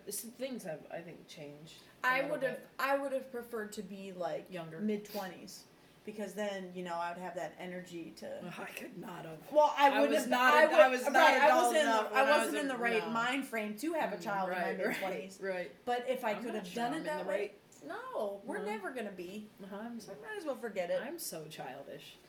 have I think changed. I would have preferred to be like younger, mid-20s, because then I would have that energy to. I could not have. Well, I wouldn't have. I wasn't in the right no. mind frame to have a child in my mid-20s. Right. But if I could have done it that way, no, we're No. never gonna be. So I might as well forget it. I'm so childish.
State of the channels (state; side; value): identical; both; correlation 1.00